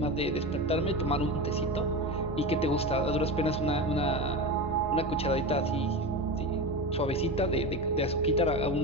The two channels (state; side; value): normal; both; correlation 0.23